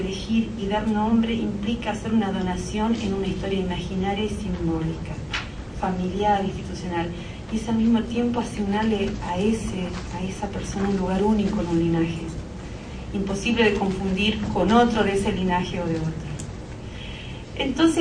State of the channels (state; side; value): identical; both; correlation 1.00